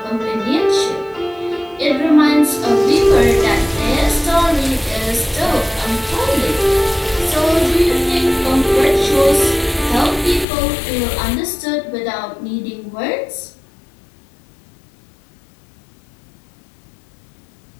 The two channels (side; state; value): right; drops out; at 10.5 s